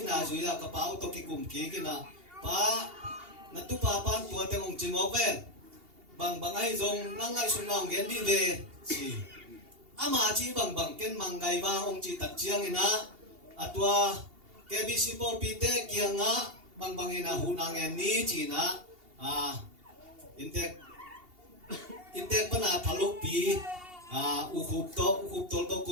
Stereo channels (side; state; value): left; late; 2.8 ms